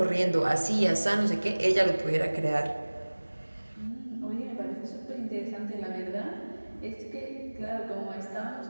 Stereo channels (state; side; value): inverted; both; correlation -1.00